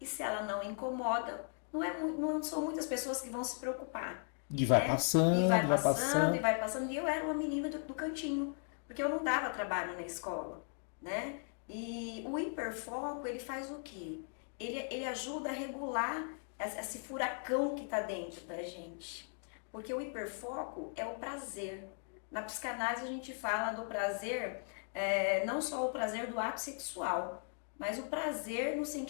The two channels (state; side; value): silent; right; 53 dB below the other